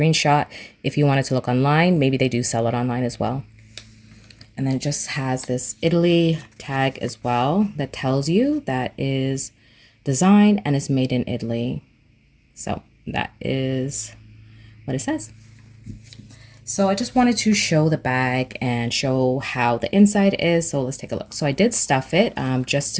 if you wanted to look online. Maybe they do sell it online as well. And then it just has this Italy tag as well that tells you that is designed and is made in Italy. So that is what it says. So I just wanted to show the bag and show how the inside is. So let's take a look. So I did stuff it just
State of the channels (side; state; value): both; identical; correlation 1.00